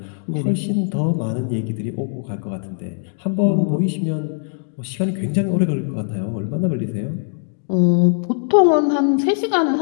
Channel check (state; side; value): silent; right; 65 dB below the other